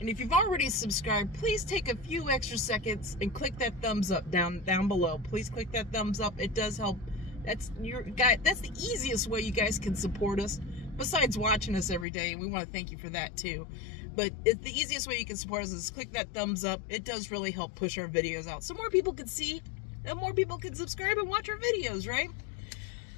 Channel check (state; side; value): drops out; right; at 12.1 s